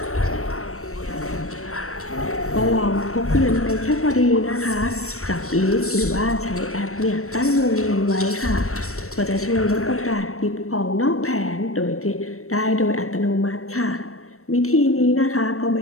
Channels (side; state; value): right; late; 0.63 ms